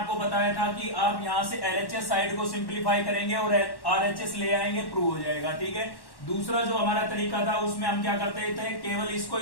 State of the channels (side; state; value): right; late; 1.1 ms